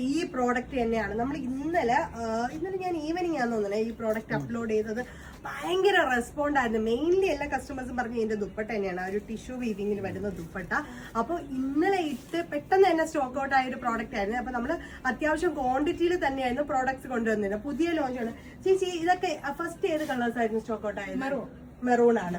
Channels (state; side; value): identical; both; correlation 1.00